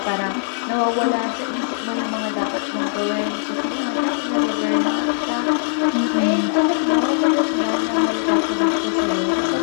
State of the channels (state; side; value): silent; right; digital silence